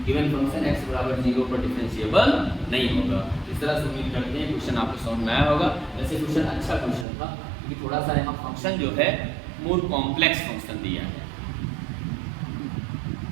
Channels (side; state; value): left; drops out; at 7.1 s